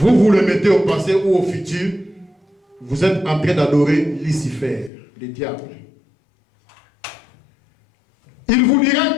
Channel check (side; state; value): right; drops out; at 4.9 s